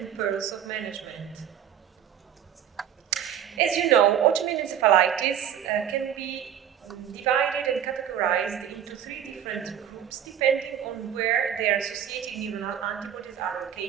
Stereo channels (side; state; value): left; quieter; 9.6 dB